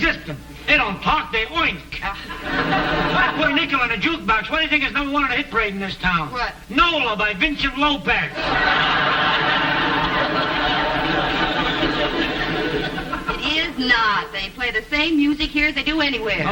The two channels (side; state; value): both; identical; correlation 1.00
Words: They don't talk, they oink. I put a nickel in a jukebox. What do you think is number one on the hit parade in this town? What? Nola by Vincent Lopez. It is not. They play the same music here as they do anywhere.